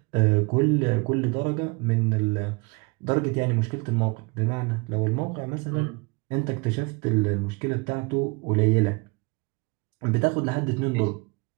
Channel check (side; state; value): left; quieter; 28.4 dB